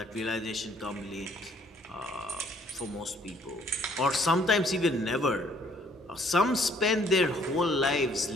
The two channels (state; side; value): normal; both; correlation 0.62